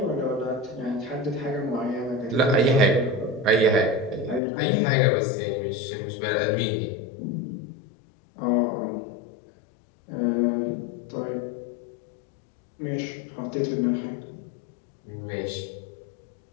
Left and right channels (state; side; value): drops out; right; at 4.4 s